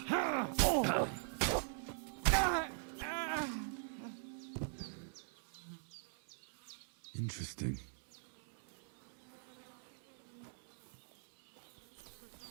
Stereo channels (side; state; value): left; silent; digital silence